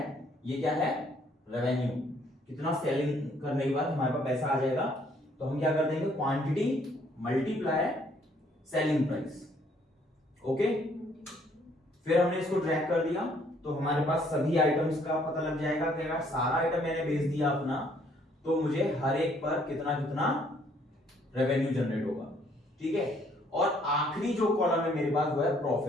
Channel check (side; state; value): both; normal; correlation 0.65